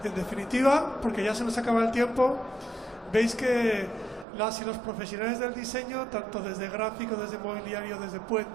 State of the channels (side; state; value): left; drops out; at 4.2 s